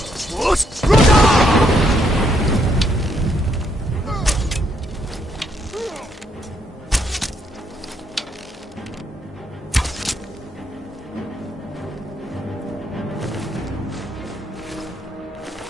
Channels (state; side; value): normal; both; correlation 0.74